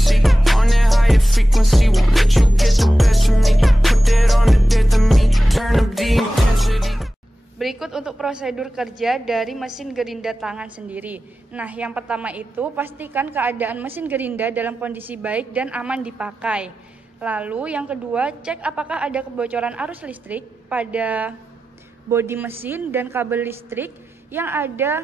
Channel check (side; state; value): both; normal; correlation 0.94